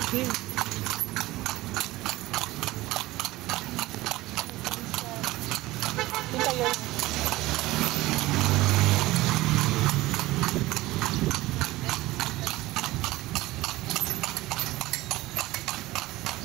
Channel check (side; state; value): left; quieter; 18.4 dB